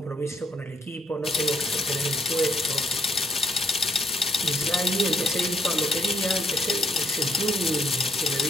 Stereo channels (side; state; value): both; normal; correlation 0.70